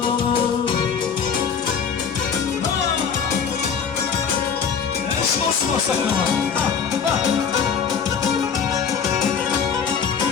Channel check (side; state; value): right; quieter; 6.8 dB